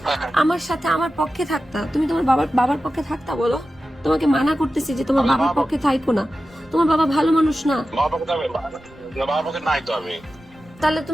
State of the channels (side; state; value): both; normal; correlation 0.93